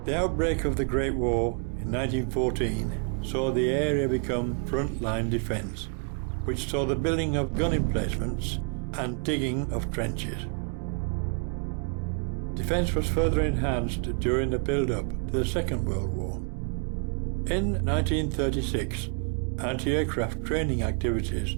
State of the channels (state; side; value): quieter; left; 37.0 dB